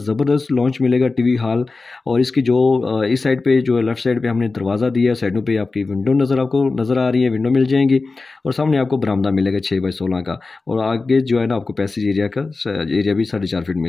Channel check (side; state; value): right; quieter; 3.8 dB